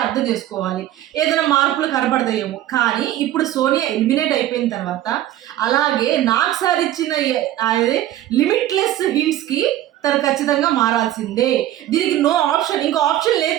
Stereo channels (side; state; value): left; quieter; 13.3 dB